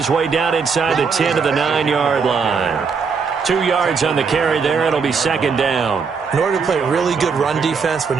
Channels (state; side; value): quieter; left; 5.5 dB